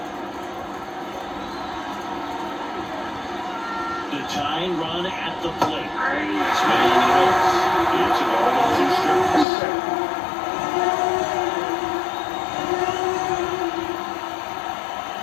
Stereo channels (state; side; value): drops out; right; at 9.5 s